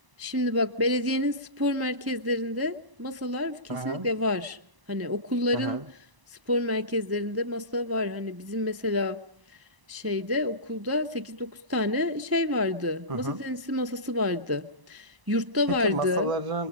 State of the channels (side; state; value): left; late; 1.0 ms